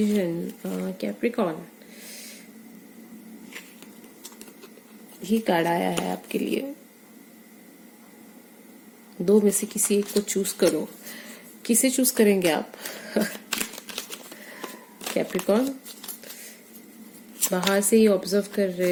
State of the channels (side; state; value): both; identical; correlation 1.00